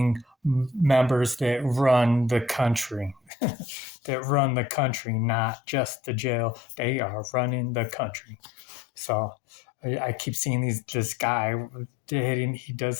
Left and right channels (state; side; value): drops out; right; at 3.2 s